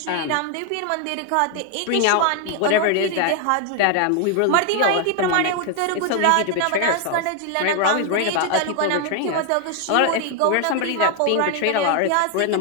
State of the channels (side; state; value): both; different; correlation 0.00